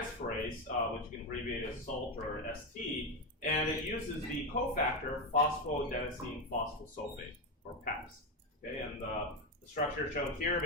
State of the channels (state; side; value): normal; both; correlation 0.11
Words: which you can abbreviate as SALT or ST, and it uses the cofactor phosphoadenosine phosphosulfate, or PAPS. Okay, and the structure shown here,